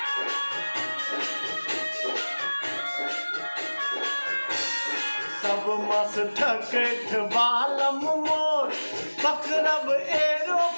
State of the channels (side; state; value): both; inverted; correlation -1.00